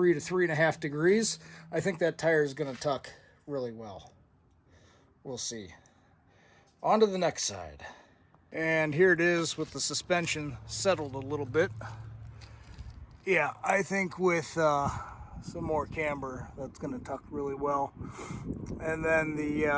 to 3.5 degrees, I think that tire is going to tuck really well. We'll see. On to the next side. And here it is with the suspension settled a little bit. Yeah, I think with some more camber, that's going to tuck really well. And then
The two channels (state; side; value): identical; both; correlation 1.00